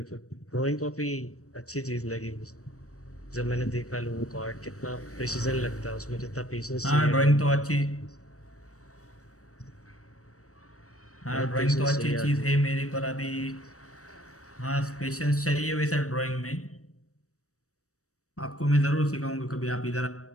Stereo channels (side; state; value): right; late; 0.65 ms